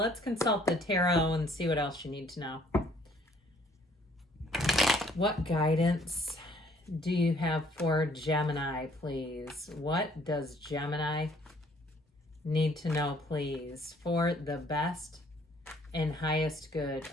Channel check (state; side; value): normal; both; correlation 0.61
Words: consult the tarot and see what else you need to know. What guidance do you have for Gemini, please? What does Gemini need to know, please, for the best and highest good